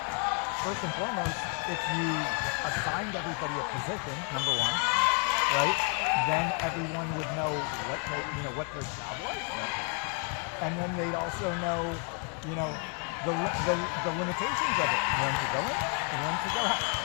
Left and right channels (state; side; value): quieter; right; 36.5 dB